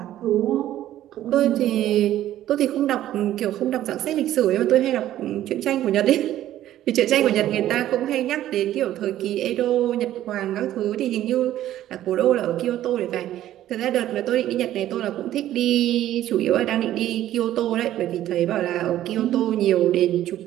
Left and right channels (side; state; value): left; quieter; 13.0 dB